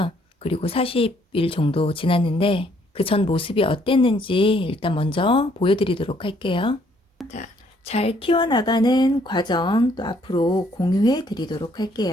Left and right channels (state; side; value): normal; both; correlation 0.66